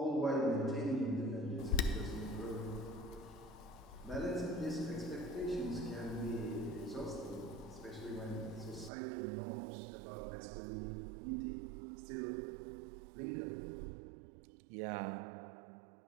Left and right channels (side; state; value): left; drops out; at 8.9 s